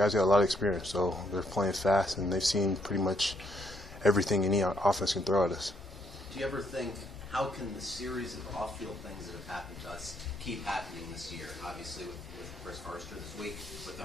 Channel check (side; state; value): both; normal; correlation 0.72